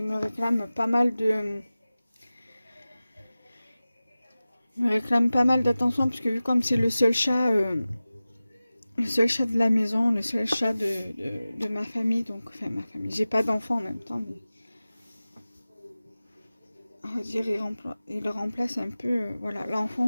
me réclame pas mal d'attention, parce que vu comme c'est le seul chat de la maison, le seul chat de ma famille, donc enfin ma famille, j'ai pas d'enfant en même temps, mais on va dire il remplace un peu voilà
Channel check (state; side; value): inverted; both; correlation -0.96